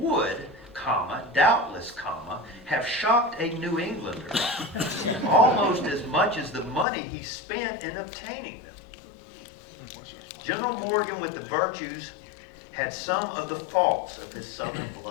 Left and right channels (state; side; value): drops out; right; at 6.9 s